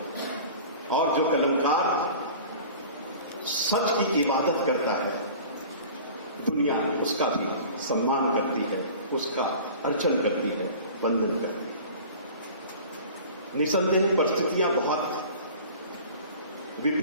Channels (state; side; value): inverted; both; correlation -0.41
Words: और जो कलमकार सच की इबादत करता है, दुनिया उसका भी सम्मान करती है, उसका अर्चन करती है, वंदन करती है। निसंदेह परिस्थितियां बहुत